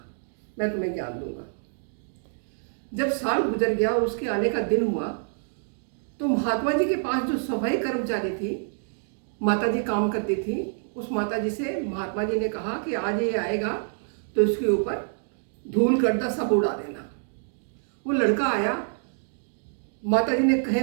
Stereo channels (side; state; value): left; silent; digital silence